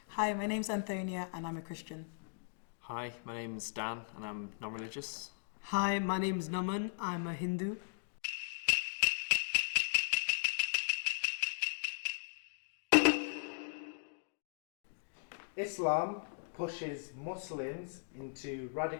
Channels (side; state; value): right; silent; digital silence